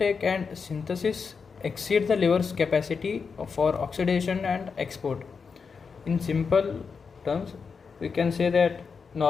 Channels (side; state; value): right; quieter; 5.5 dB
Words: and synthesis exceed the liver's capacity for oxidation and export. In simple terms, we can say that